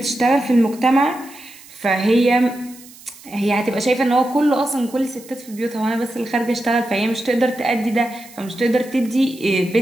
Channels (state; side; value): noise; right; hiss, 21 dB below the sound